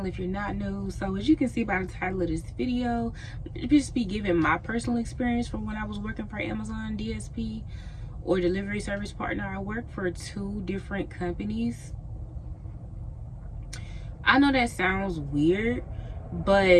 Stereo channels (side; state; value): both; identical; correlation 1.00